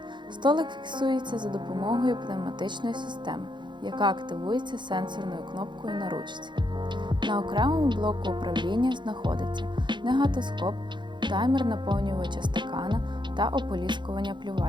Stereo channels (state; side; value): late; left; 0.22 ms